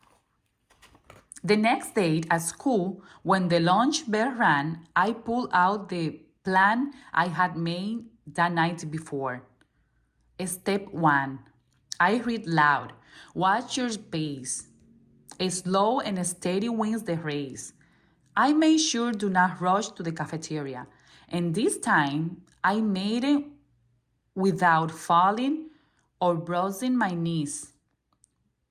The next day at school, when the lunch bell rang, I pulled out the plan I had made the night before. Step 1. I read loud. Watch your pace. Slow and steady wins the race. I made sure do not rush to the cafeteria. And this time, I made it without falling or bruising my knees.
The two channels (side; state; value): both; identical; correlation 1.00